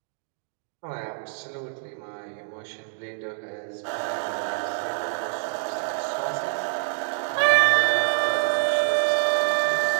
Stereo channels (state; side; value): silent; left; 61 dB below the other